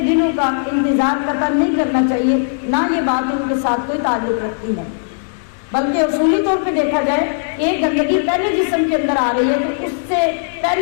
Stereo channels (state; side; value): silent; right; digital silence